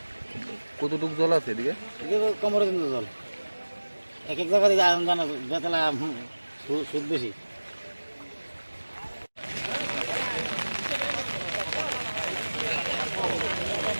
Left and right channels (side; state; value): both; inverted; correlation -1.00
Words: কতটুকু জল আছে এদিকে? এদিকে কোমরের কিন্তু জল। এক এক জায়গা থেকে আয়রন জানা বেতলা সুদ বেশি।